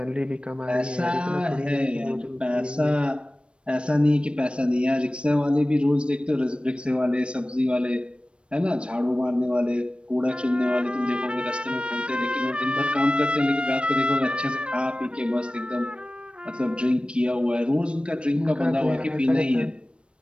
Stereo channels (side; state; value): left; late; 0.058 ms